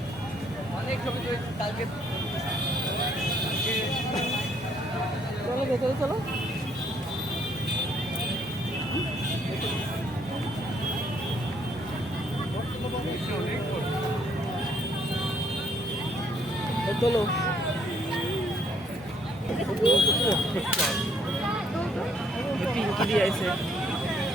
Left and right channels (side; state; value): both; normal; correlation 0.67